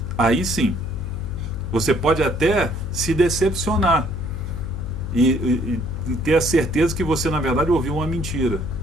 Aí sim, você pode até se decepcionar e ter a certeza que você na verdade ouviu uma mentira,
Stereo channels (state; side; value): noise; left; hum, 6 dB below the sound